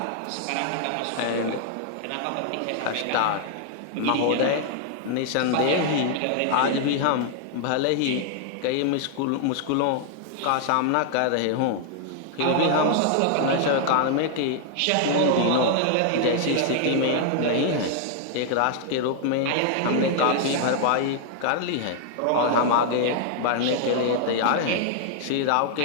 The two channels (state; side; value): different; both; correlation 0.00